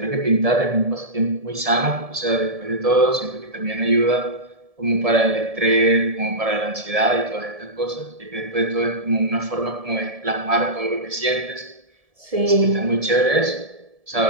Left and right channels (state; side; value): late; left; 1.7 ms